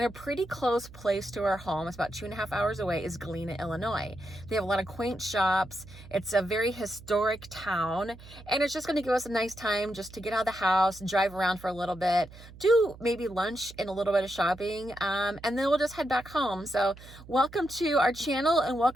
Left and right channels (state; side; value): noise; right; hum, 18 dB below the sound